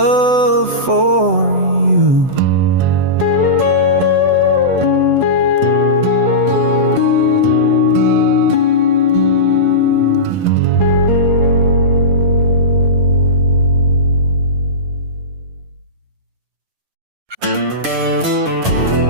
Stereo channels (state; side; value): late; left; 7.8 ms